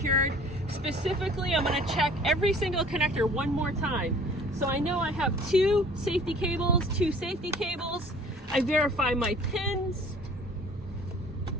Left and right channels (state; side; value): normal; both; correlation 0.50